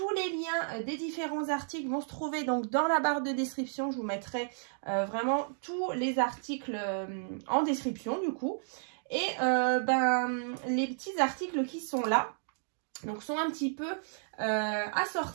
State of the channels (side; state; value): left; silent; digital silence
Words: les liens des différents articles vont se trouver donc dans la barre de description. Je vous mettrai vraiment tous les articles en description du coup. Et les petits articles qui sont là donc sont un petit peu